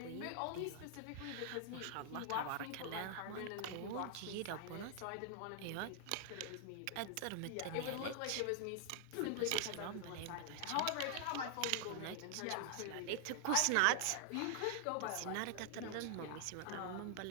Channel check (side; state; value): both; different; correlation 0.00